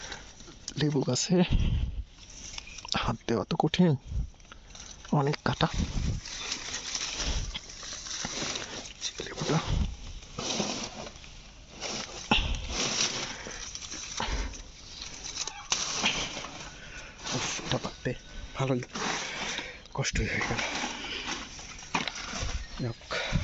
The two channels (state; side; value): identical; both; correlation 1.00